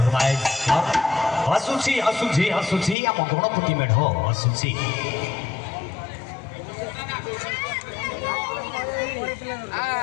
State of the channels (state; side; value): drops out; right; at 3.0 s